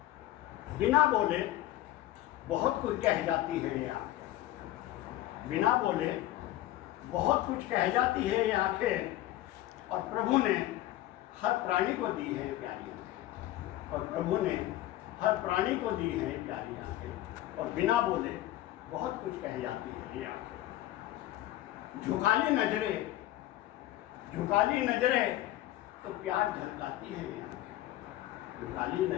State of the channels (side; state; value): right; quieter; 15.0 dB